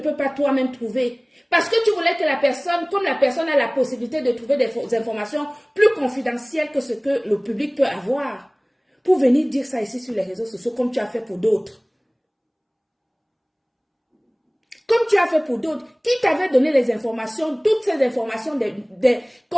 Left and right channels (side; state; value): both; identical; correlation 1.00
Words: pas toi-même trouver? Parce que tu voulais que la personne, comme la personne a la possibilité de trouver des informations plus confidentielles que ce que le public peut avoir, pour venir dire ça ici sur les réseaux sociaux comme tu as fait pour d'autres. Comme tu as fait pour d'autres, qui t'avait donné les informations, toutes ces informations des